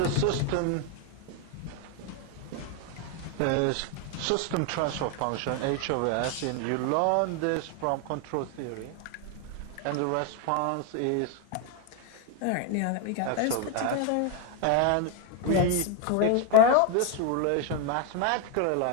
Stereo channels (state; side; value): different; both; correlation 0.01